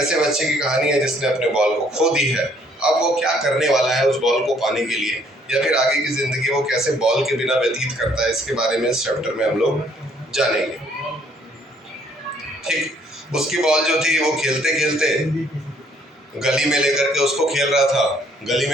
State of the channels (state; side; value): normal; both; correlation 0.64